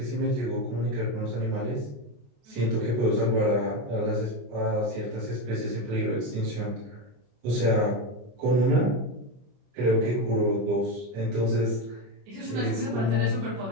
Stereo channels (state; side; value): late; left; 25 ms